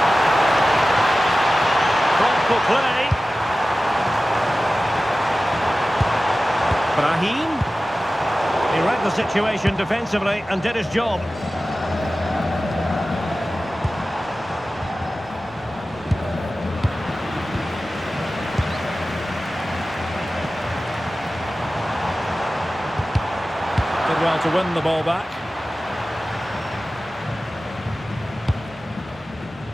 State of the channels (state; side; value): normal; both; correlation 0.96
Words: Thoughtful play. Brahim. He read the situation defensively and did his job. Did well to win the ball back.